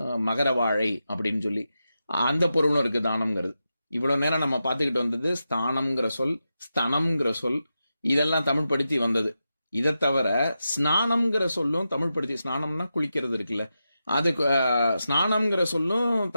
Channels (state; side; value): inverted; both; correlation -0.89